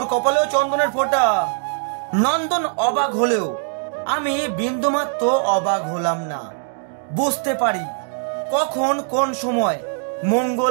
কপালেও চন্দনের ফোঁটা? নন্দন অবাক হলেও আমি বিন্দুমাত্র অবাক হলাম না। বুঝতে পারি কখন কোন সময়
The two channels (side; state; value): left; silent; digital silence